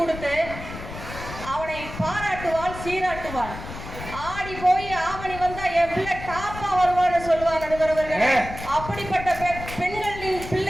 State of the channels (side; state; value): left; noise; rumble, 11 dB below the sound